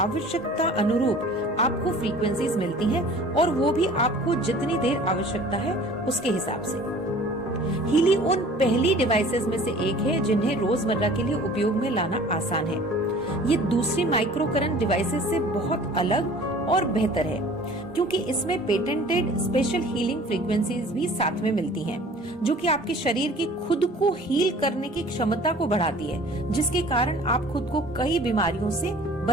आवश्यकता अनुरूप आपको फ्रीक्वेंसीज मिलती हैं और वो भी आपको जितनी देर आवश्यकता है उसके हिसाब से। हीली उन पहली डिवाइसेस में से एक है जिन्हें रोजमर्रा के लिए उपयोग में लाना आसान है। ये दूसरी माइक्रो करंट डिवाइसेस से बहुत अलग और बेहतर है क्योंकि इसमें पेटेंटेड स्पेशल हीलिंग फ्रीक्वेंसीज भी साथ में मिलती हैं, जो कि आपके शरीर की खुद को हील करने की क्षमता को बढ़ाती है, जिसके कारण आप खुद को कई बीमारियों से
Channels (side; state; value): both; normal; correlation 0.47